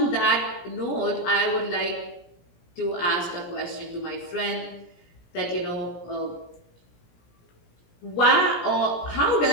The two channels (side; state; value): right; late; 17 ms